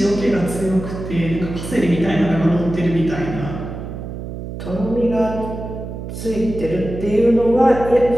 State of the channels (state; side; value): noise; right; hum, 8 dB below the sound